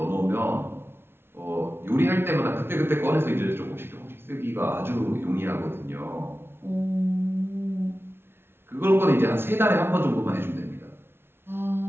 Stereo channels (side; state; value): left; late; 0.11 ms